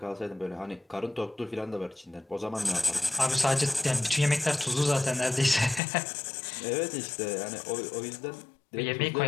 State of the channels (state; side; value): drops out; right; at 5.8 s